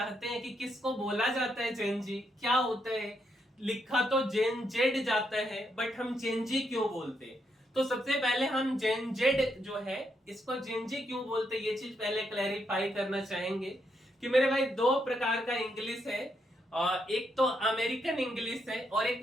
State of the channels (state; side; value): normal; both; correlation 0.79